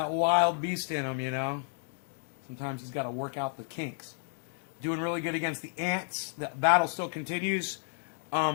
wild beast in him, Sometimes he's got to work out the kinks. Doing really good against the ants. The battle still continues.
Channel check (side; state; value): right; silent; 57 dB below the other